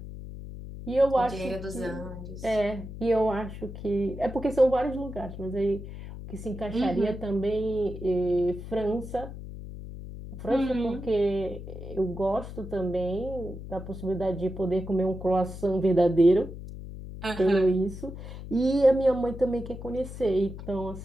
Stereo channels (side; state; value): left; noise; hum, 11 dB below the sound